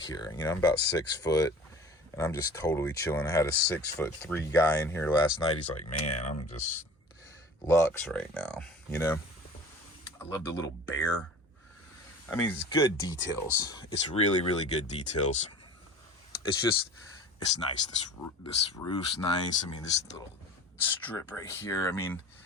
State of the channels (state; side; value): normal; both; correlation 0.41